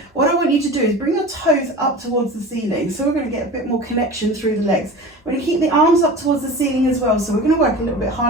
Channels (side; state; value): both; normal; correlation 0.35